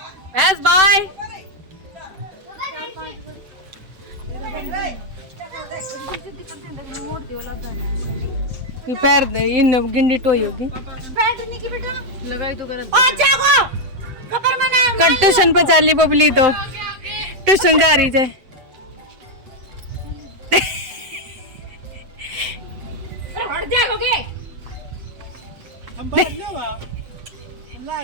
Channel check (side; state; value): left; late; 7.9 ms